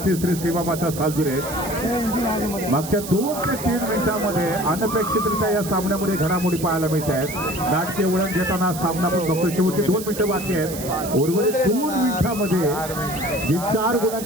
श्री सीमामाता सालदुरे मागच्या 2 ते 3 मिनिटांमध्ये अनपेक्षितरित्या या सामन्यामध्ये घडामोडी पाहायला मिळत आहेत. नाटकीय वळण घेताना सामना पण बघतो. शेवटचे 2 मिनिटं बाकी आहेत. उर्वरित 2 मिनिटांमध्ये जी 4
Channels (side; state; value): right; noise; hiss, 10 dB below the sound